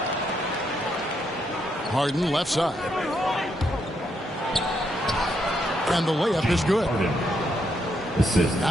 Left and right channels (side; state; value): both; normal; correlation 0.77